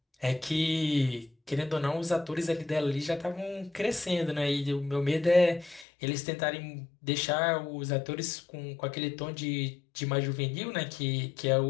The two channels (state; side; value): drops out; right; at 5.9 s